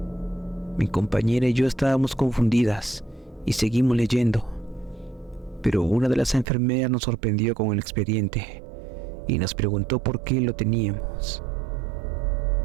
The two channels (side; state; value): left; drops out; at 6.5 s